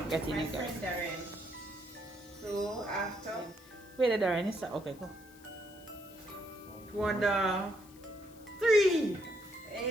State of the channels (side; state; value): left; noise; hiss, 24 dB below the sound